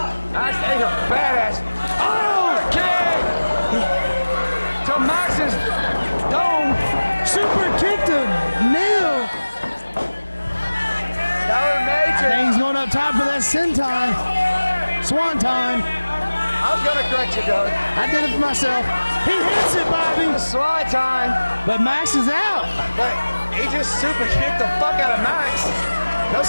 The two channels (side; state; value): both; inverted; correlation -1.00